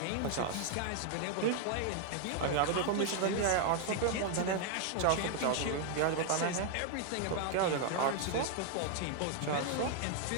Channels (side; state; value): both; different; correlation 0.00